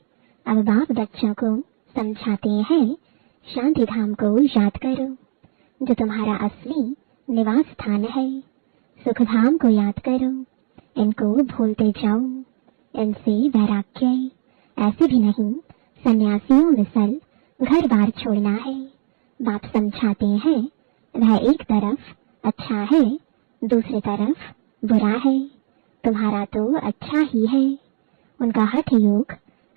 अब बाप बच्चों को समझाते हैं शांति धाम को याद करो जो तुम्हारा असली निवास स्थान है। सुख धाम को याद करो, इनको भूलते जाओ, इनसे वैराग्य। ऐसे भी नहीं सन्यासियों मिसल घर बार छोड़ना है। बाप समझाते हैं वह एक तरफ अच्छा है, दूसरी तरफ बुरा है। तुम्हारा तो अच्छा ही है, उनका हठ योग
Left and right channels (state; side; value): silent; left; digital silence